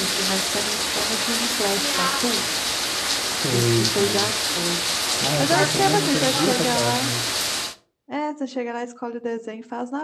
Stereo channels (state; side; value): identical; both; correlation 1.00